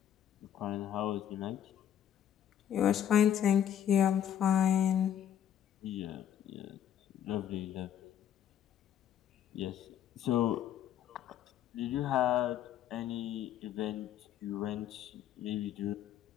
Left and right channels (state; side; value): quieter; right; 10.0 dB